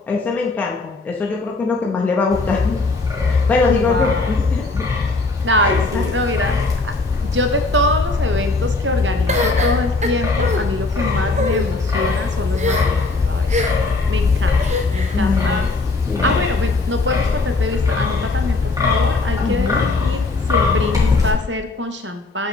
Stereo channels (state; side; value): quieter; right; 3.4 dB